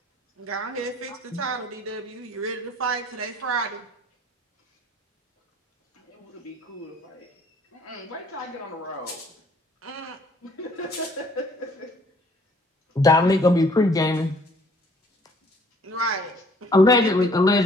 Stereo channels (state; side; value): normal; both; correlation 0.58